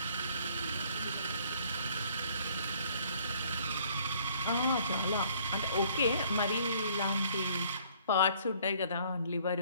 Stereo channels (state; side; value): inverted; both; correlation -0.60